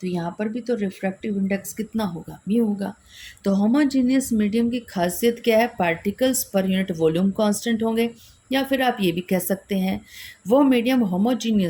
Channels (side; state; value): both; identical; correlation 1.00